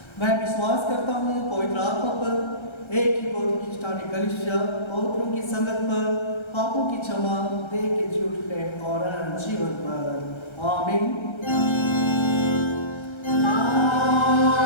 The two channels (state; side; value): late; right; 1.3 ms